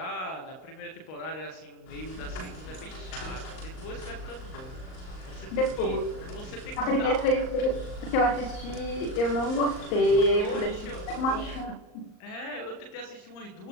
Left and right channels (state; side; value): late; right; 38 ms